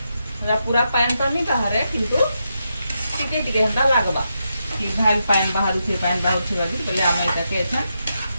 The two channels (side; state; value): both; inverted; correlation -0.85